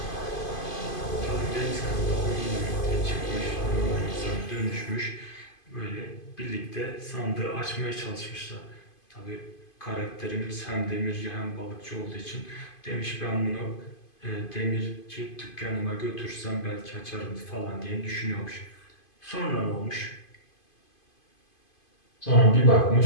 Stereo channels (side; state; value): right; late; 2.5 ms